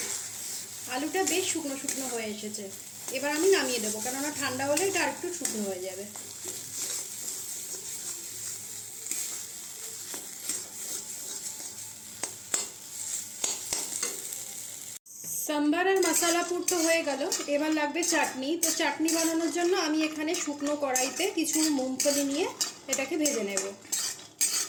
আলুটা বেশ শুকনো শুকনো হয়ে এসেছে, এবার আমি নামিয়ে দেবো, কেননা ঠান্ডা হলে এটা আর একটু শুকনো হয়ে যাবে। সাম্বার আর মশলা পুর তো হয়ে গেল, এবার লাগবে চাটনি। তো চাটনি বানানোর জন্য আমি এখানে শুকনো কড়াইতে কিছু মুংফলি নিয়ে এটাকে ভেজে নেব।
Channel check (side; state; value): both; identical; correlation 1.00